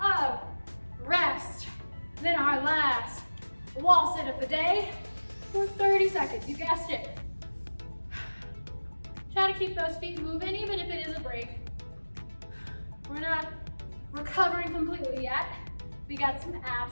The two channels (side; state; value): both; inverted; correlation -1.00